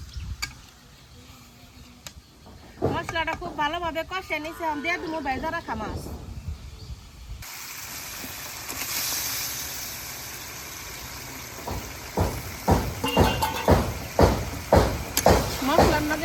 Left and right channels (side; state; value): both; identical; correlation 1.00